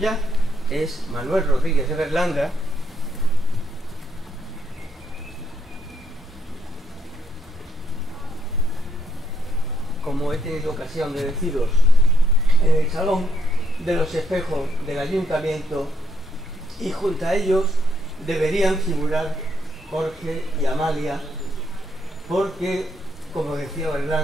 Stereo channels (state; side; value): normal; both; correlation 0.74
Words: es Manuel Rodríguez de Berlanga. Como he tenido ocasión de deciros, en el Salón de los Espejos del Ayuntamiento, y junto a ellos deberían figurar Jorge y Amalia, porque, como decía